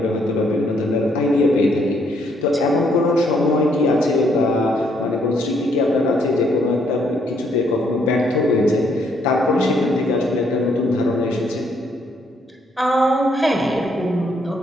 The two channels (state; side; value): normal; both; correlation 0.70